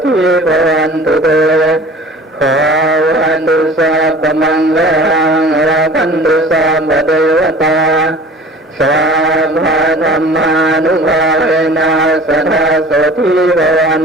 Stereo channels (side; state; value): both; normal; correlation 0.44